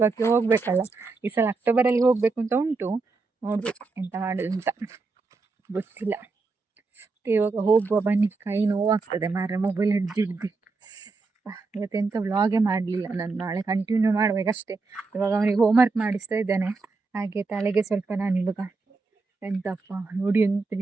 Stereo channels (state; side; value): quieter; left; 4.0 dB